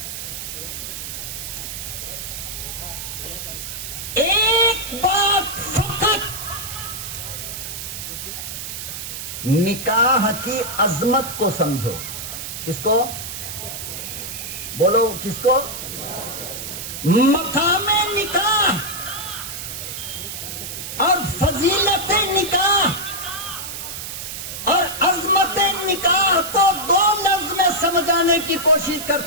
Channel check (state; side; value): noise; right; hiss, 7 dB below the sound